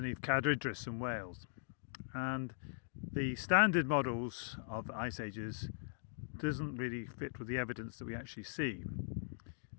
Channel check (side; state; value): right; silent; digital silence